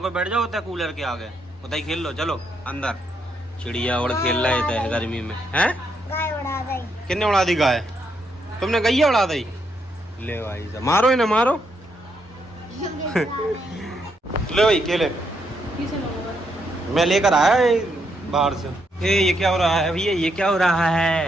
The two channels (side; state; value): both; normal; correlation 0.77